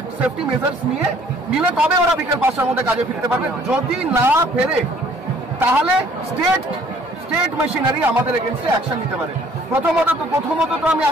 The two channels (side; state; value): both; normal; correlation 0.58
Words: সেফটি মেজার্স নিলে তবে ওরা বিকেল 5টার মধ্যে কাজে ফিরতে পারবে। যদি না ফেরে তাহলে স্টেট মেশিনারি আমাদের এগেনস্টে অ্যাকশন নিতে পারে। প্রথমত তো আমি